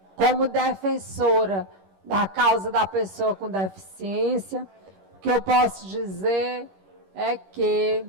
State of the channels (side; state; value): left; late; 21 ms